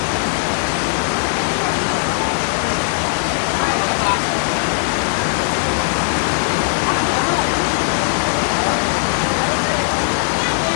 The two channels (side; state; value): right; silent; digital silence